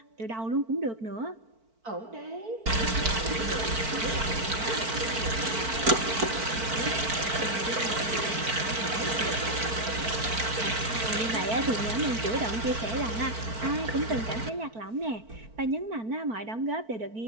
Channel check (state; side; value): late; left; 4.5 ms